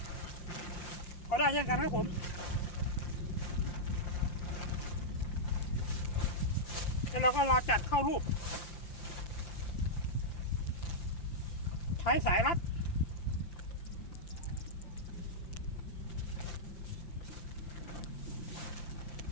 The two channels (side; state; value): right; late; 5.8 ms